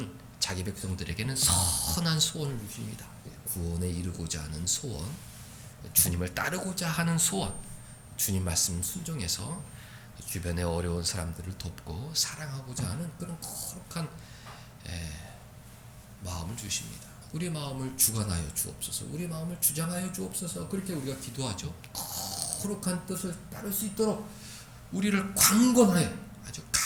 자기 백성들에게는 선한 소원을 주십니다. 구원에 이르고자 하는 소원, 주님을 따르고자 하는 소원, 주님 말씀 순종해서 주변의 어려운 사람들을 돕고 사랑하고자 하는 그런 거룩한 마음을 주십니다. 우리 마음을 주관하여 주옵소서. 우리 마음을 주장하여 주옵소서. 그렇게 우리가 기도하죠. 거룩한 뜻을 따를 수 있도록 우리를 강권하여 아주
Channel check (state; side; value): identical; both; correlation 1.00